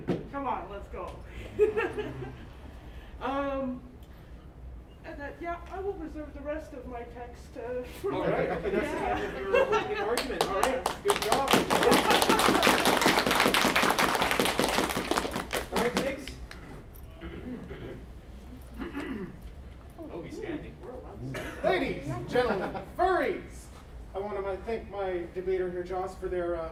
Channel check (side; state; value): both; identical; correlation 1.00